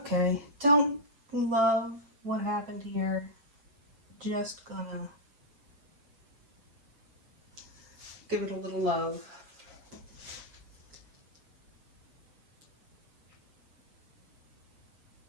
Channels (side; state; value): left; late; 7.0 ms